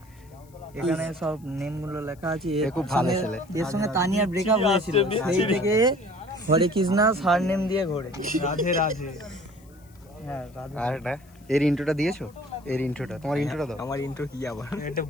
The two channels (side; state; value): left; noise; hiss, 29 dB below the sound